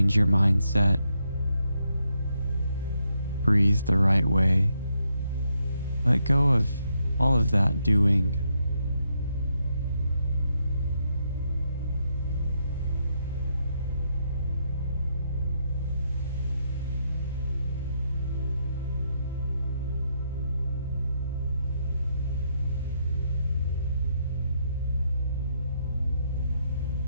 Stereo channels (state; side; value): inverted; both; correlation -0.78